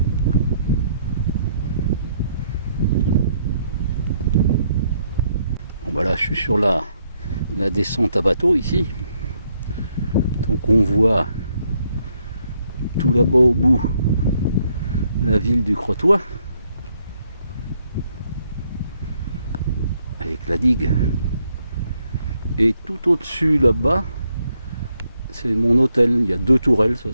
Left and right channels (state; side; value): inverted; both; correlation -0.73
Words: Bon bah là je suis sur la descente à bateau ici. Donc on voit tout là-bas au bout la ville du Crotoy avec la digue. Et tout au-dessus là-bas, c'est mon hôtel. Il y a 2 tourelles,